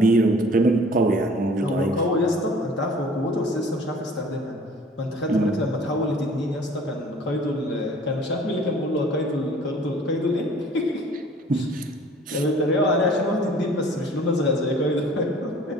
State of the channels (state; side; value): normal; both; correlation 0.50